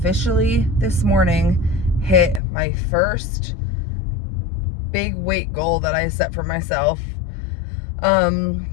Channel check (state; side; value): drops out; right; at 2.4 s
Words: this morning hit my first big weight goal that I set for myself.